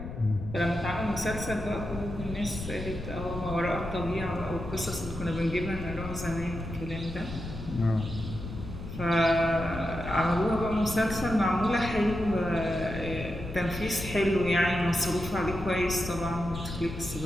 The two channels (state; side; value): noise; left; rumble, 9 dB below the sound